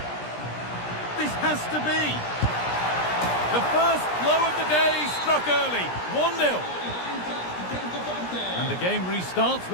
This has to be. The first blow of the day struck early, 1-0. And the game restarts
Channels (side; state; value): right; late; 17 ms